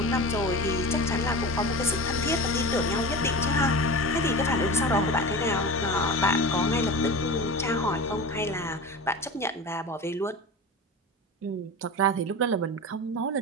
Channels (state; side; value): normal; both; correlation 0.30